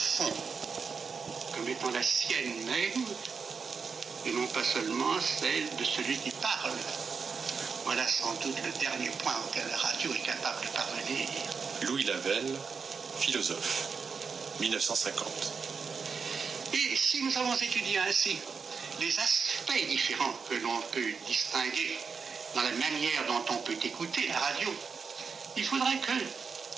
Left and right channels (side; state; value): left; quieter; 5.5 dB